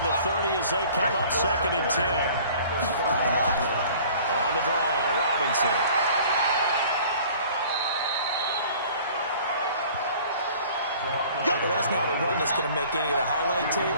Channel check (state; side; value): inverted; both; correlation -0.49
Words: the 30 as they come up 2nd and 10. On the draw, Robinson. Well, that's not a run that's going to make any of the highlight